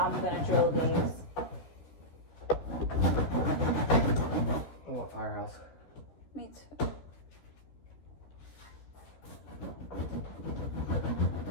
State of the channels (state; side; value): late; right; 13 ms